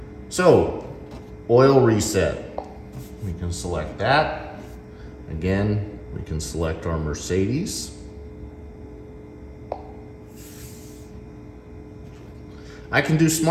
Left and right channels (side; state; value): both; identical; correlation 1.00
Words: So, oil reset. We can select that. Again, we can select our Mercedes. I can do